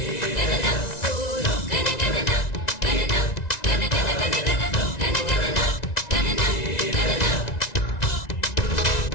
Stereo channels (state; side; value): late; right; 1.9 ms